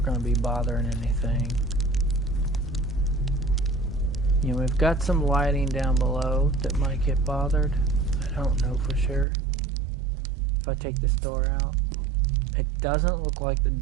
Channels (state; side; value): drops out; left; at 9.2 s